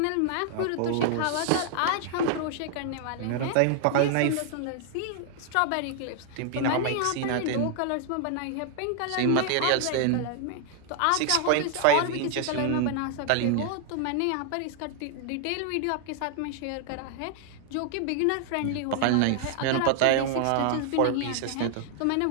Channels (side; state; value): both; different; correlation 0.00